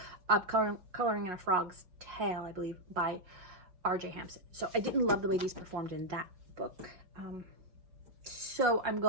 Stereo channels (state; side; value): late; left; 5.4 ms